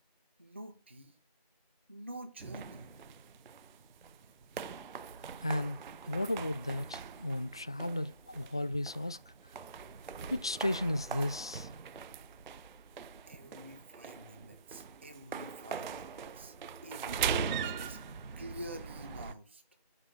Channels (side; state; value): both; inverted; correlation -0.60